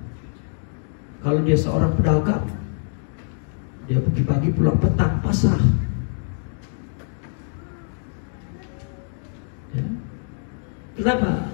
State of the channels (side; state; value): right; silent; digital silence